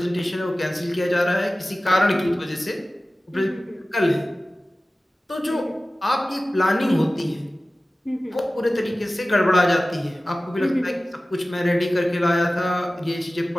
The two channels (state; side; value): normal; both; correlation 0.97